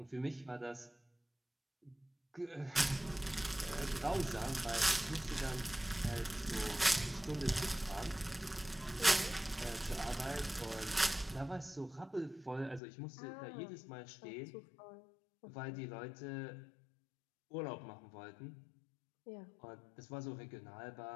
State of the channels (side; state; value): right; drops out; at 12.8 s